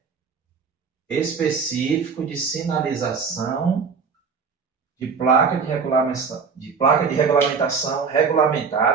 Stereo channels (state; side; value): quieter; left; 5.6 dB